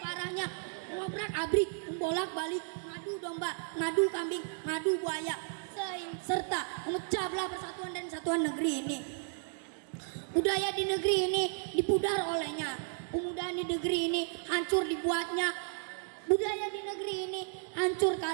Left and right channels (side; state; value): left; silent; 55 dB below the other